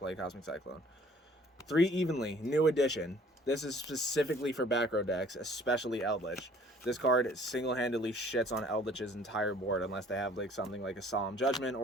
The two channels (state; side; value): normal; both; correlation 0.55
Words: Cosmic Cyclone. 3 Evenly, new edition. This is specifically for back row decks, especially Eldritch. This card single-handedly shits on Eldritch's entire board unless they have like something like a Solemn Judgment,